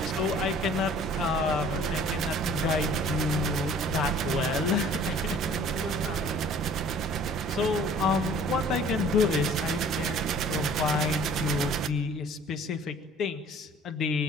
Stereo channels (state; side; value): normal; both; correlation 0.51